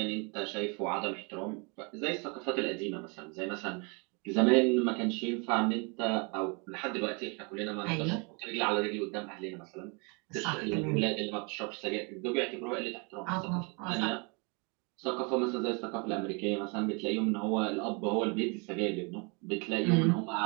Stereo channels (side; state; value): left; quieter; 32.3 dB